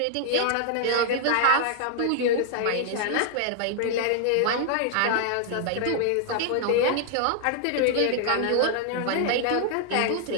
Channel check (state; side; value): different; both; correlation 0.00